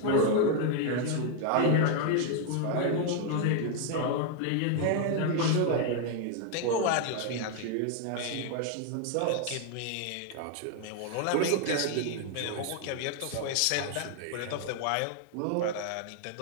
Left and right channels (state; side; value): different; both; correlation 0.00